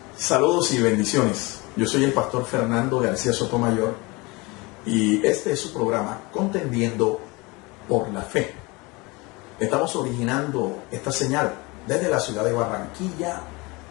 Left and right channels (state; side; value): quieter; right; 25.3 dB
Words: Saludos y bendiciones. Yo soy el pastor Fernando García Sotomayor y este es su programa Contendiendo por la Fe. Estamos originando esta señal desde la ciudad de Barranquilla,